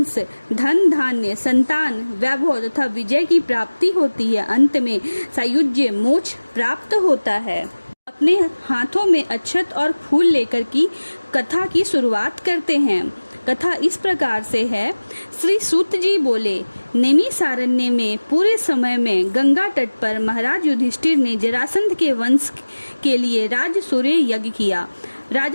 धन धान्य, संतान, वैभव तथा विजय की प्राप्ति होती है। अंत में सायुज्य, मोक्ष प्राप्त होता है। अपने हाथों में अक्षत और फूल लेकर की कथा की शुरुआत करते हैं। कथा इस प्रकार से है। श्री सूत जी बोले, नैमिषारण्य में पूरे समय में गंगा तट पर महाराज युधिष्ठिर ने जरासंध के वंश के लिए राजसूय यज्ञ किया।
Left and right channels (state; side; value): inverted; both; correlation -1.00